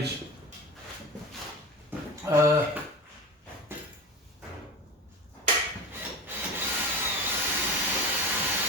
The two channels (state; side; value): normal; both; correlation 0.29